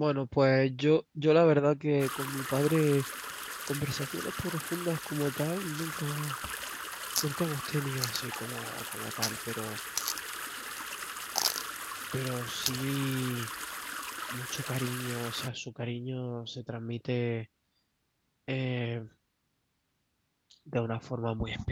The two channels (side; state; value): both; identical; correlation 1.00